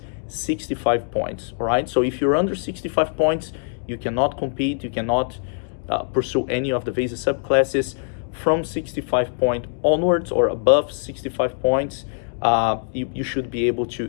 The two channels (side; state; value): right; silent; digital silence